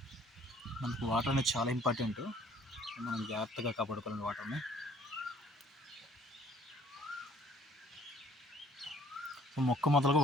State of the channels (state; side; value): normal; both; correlation 0.57